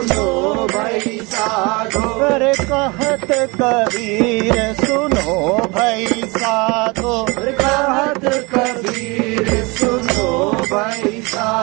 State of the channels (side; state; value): left; quieter; 26.7 dB